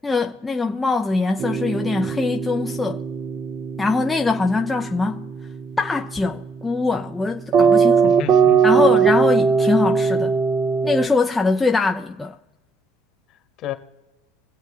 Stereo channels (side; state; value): both; normal; correlation 0.73